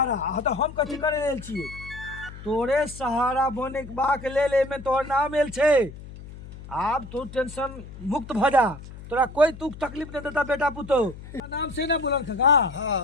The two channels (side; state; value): left; noise; hum, 15 dB below the sound